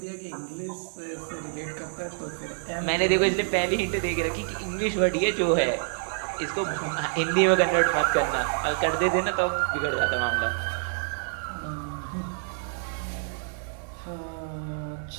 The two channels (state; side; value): silent; left; digital silence